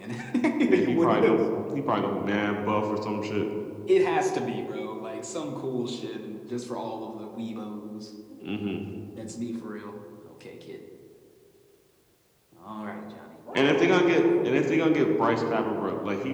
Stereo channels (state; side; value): identical; both; correlation 1.00